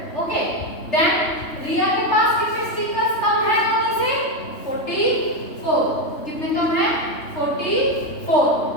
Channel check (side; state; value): right; late; 3.3 ms